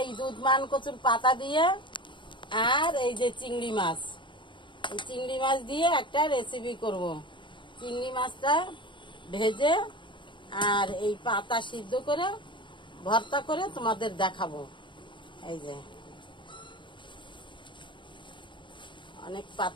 দুধমান কচুর পাতা দিয়ে আর এই যে চিংড়ি মাছ, এই চিংড়ি মাছ দিয়ে একটা রেসিপি করব। চিংড়ি মাছটা ভেজে আর এই পাতা সিদ্ধ করে ভর্তা করে তোমাদের দেখাবো। এই যে অনেক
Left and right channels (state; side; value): late; right; 0.23 ms